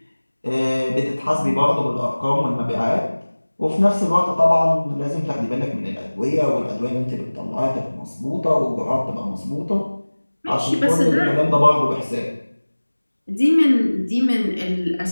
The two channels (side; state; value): both; inverted; correlation -1.00